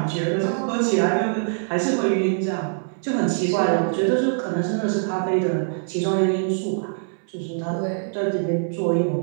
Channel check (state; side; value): silent; left; 62 dB below the other